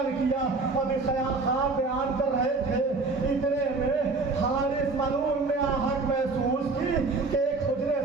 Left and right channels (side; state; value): left; quieter; 3.8 dB